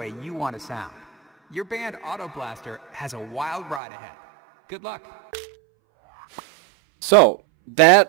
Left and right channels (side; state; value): left; drops out; at 3.8 s